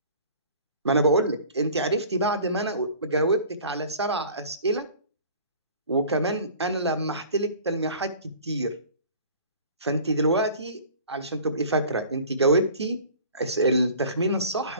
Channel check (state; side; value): inverted; both; correlation -0.45